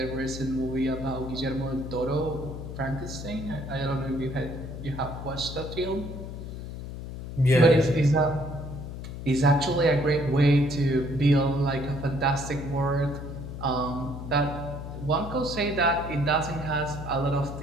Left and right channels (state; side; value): noise; left; hum, 9 dB below the sound